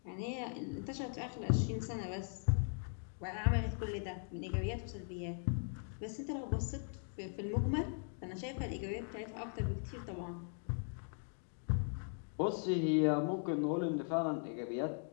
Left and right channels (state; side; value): silent; right; 51 dB below the other